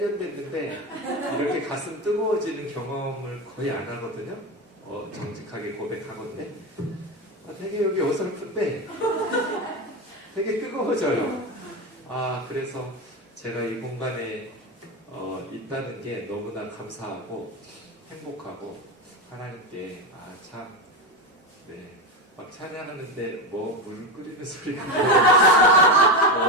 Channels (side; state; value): both; normal; correlation 0.17